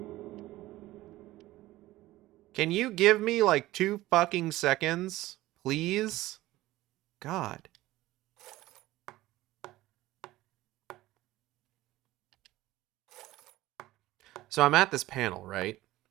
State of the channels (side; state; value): left; quieter; 17.0 dB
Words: Can you give me like 2 fucking seconds, please? God. So I'm at this panel, right?